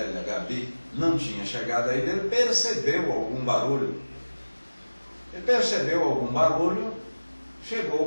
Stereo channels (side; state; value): both; inverted; correlation -1.00